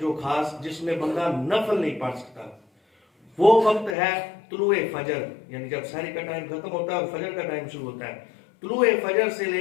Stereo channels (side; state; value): right; drops out; at 4.0 s